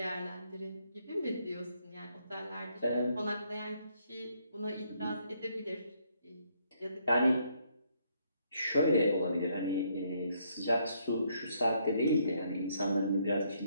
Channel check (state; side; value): inverted; both; correlation -0.71